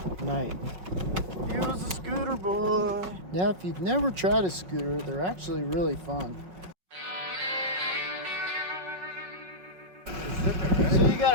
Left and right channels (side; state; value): left; late; 5.4 ms